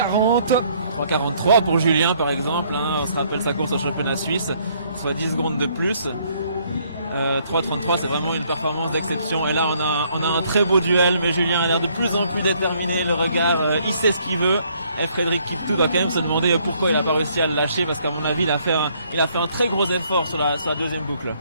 3,43 pour Julien par exemple, hein. On se rappelle sa course au championnat suisse, soit 10 secondes de plus. 3,33 c'est vraiment une performance d'exception et là on a un très beau duel, mais Julien a l'air de plus en plus déterminé, le regard, il sait ce qu'il veut. Et Frédéric Kiptou va quand même se demander pourquoi il n'a pas réussi à le lâcher, parce qu'à mon avis il a fait un très gros effort sur la deuxième boucle.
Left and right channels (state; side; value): inverted; both; correlation -0.66